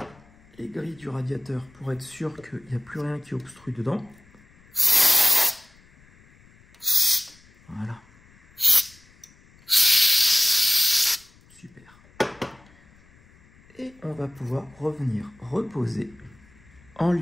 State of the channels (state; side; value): noise; left; rumble, 28 dB below the sound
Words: les grilles du radiateur pour être sûr qu'il n'y a plus rien qui obstrue dedans. Voilà. Super. Et on va pouvoir revenir reposer en